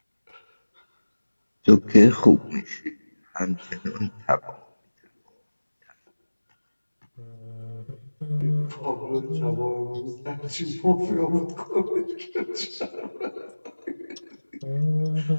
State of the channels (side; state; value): both; inverted; correlation -1.00